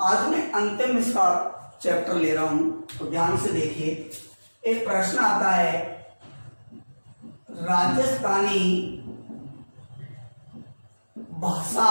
आज मैं अंतिम इसका चैप्टर ले रहा हूँ, तो ध्यान से देखिए। एक प्रश्न आता है, राजस्थानी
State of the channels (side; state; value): both; inverted; correlation -1.00